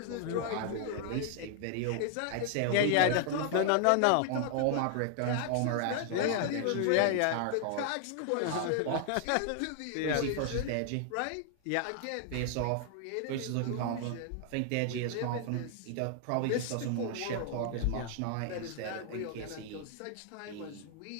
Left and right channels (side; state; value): both; different; correlation 0.00